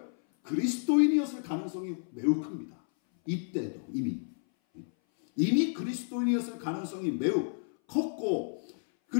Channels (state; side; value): silent; right; 57 dB below the other